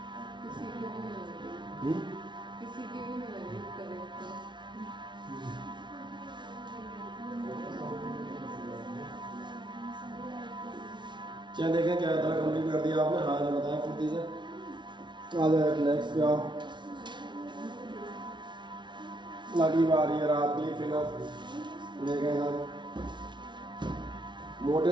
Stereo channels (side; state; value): left; late; 0.23 ms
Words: किसी की भी नहीं करेक्ट। चलिए देखें क्या इतना कंप्लीट कर दिया आपने, हाँ ना बताएं फुर्ती से। आ जाए नेक्स्ट पे आओ, अगली बार ये रात की फिगर देखें सर।